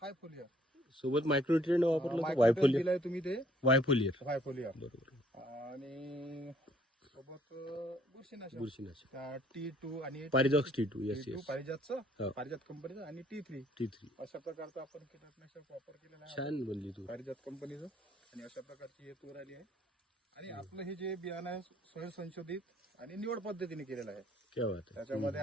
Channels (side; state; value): both; normal; correlation 0.62